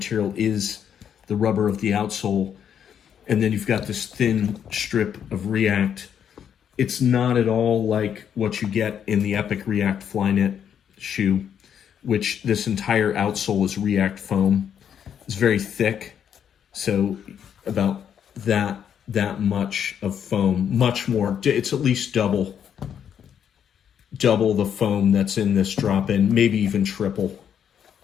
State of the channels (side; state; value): right; quieter; 8.6 dB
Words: is the rubber of the outsole. And then you've got this thin strip of React. It's not at all like what you get in the Epic React Flyknit shoe, which this entire outsole is React foam. It's very thick. So about that much of foam, much more. It's at least double the foam that's in this drop-in, maybe even triple